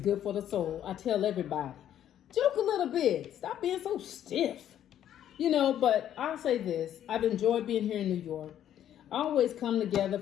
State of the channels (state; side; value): quieter; right; 10.8 dB